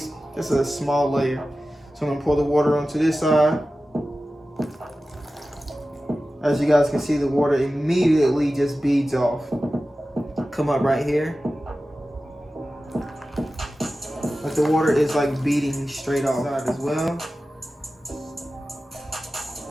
just a small layer. So I'm gonna pour the water onto this side. As you guys can see, the water immediately just beads off. Come up right here. Like the water is like beading straight off side as well.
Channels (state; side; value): normal; both; correlation 0.95